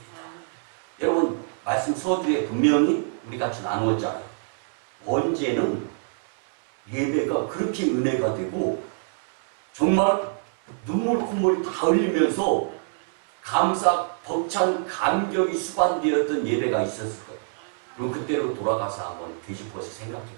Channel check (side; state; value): left; silent; 58 dB below the other